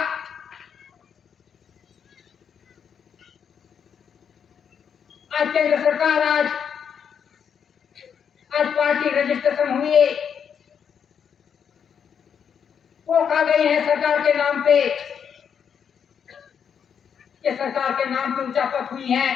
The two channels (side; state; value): right; quieter; 7.5 dB